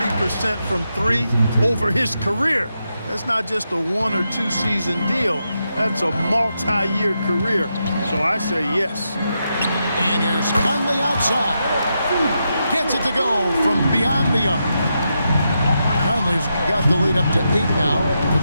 from 3 over his career. That's not just a 1 or 2 season deal. That's a multi-year career. So I say yes. And here's Conley outside. Gets it to go from beyond the arc. Conley's got the lead up to 8 now for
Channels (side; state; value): both; inverted; correlation -0.85